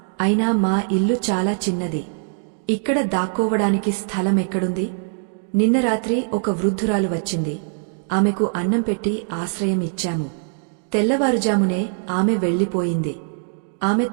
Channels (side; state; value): left; silent; digital silence